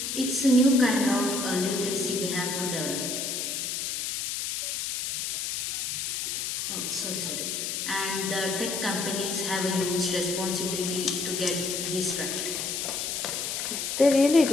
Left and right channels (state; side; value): noise; left; hiss, 2 dB below the sound